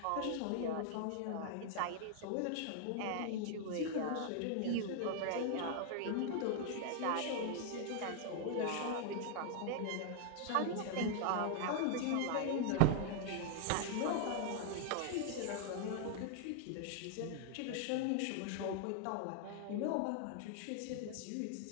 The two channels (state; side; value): different; both; correlation 0.00